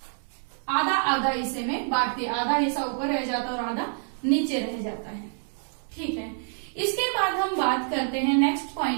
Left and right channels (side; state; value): left; silent; 60 dB below the other